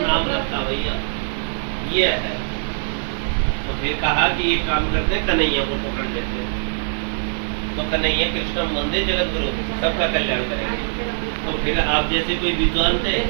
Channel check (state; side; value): silent; left; digital silence